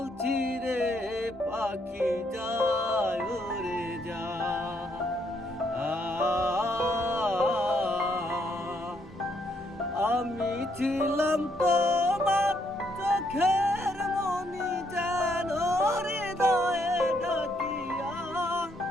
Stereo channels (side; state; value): both; normal; correlation 0.72